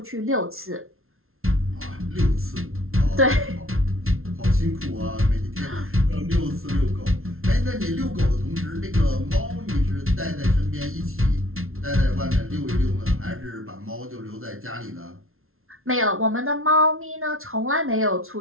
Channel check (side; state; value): left; late; 0.62 ms